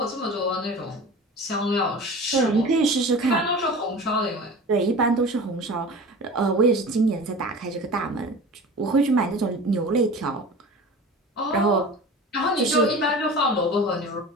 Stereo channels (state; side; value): normal; both; correlation 0.36